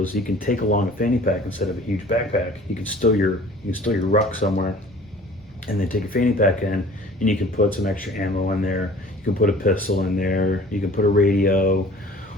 you can take along a fanny pack instead of a huge backpack. You can stow your ruck somewhere, and then take a fanny pack in, and you can put some extra ammo in there. You can put a pistol in there. You can put a radio,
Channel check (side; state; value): both; normal; correlation 0.47